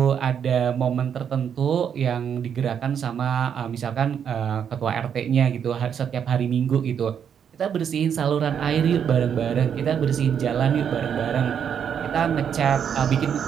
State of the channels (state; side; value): quieter; left; 8.1 dB